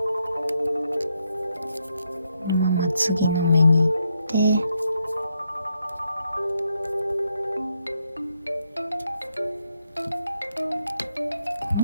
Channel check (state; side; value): inverted; both; correlation -0.79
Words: のまま次の目に行ってこ